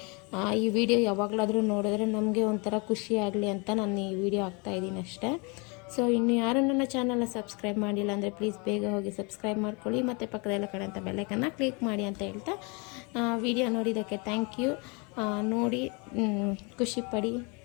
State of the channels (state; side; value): quieter; right; 30.9 dB